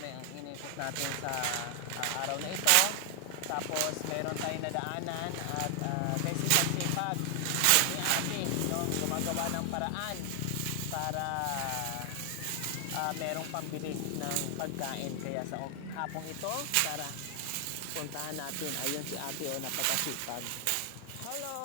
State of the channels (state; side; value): different; both; correlation 0.00